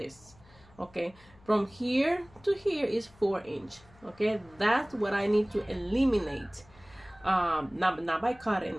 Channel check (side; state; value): left; noise; hum, 26 dB below the sound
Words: Okay, from here to here is 4 inch. Okay, that's what I need to eliminate. Not by cutting.